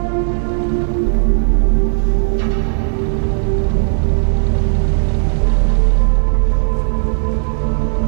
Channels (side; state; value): left; silent; digital silence